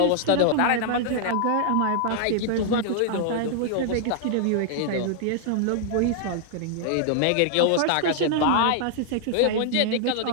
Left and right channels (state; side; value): different; both; correlation -0.01